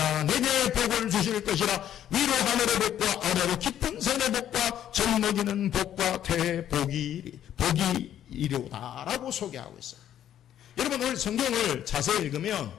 내게 복을 주실 것이라. 위로 하늘의 복과 아래로 깊은 산의 복과 젖 먹이는 복과 대복이 이로다라고 소개하고 있어요. 여러분, 오늘 성경을 자세히 읽으면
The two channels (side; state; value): right; quieter; 10.8 dB